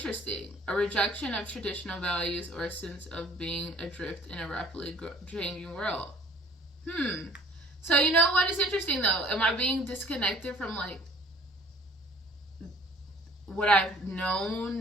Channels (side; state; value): both; normal; correlation 0.53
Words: A rejection of traditional values or a sense of being adrift in a rapidly changing world. So you know what is interesting though? Am I being disconnected from like what I've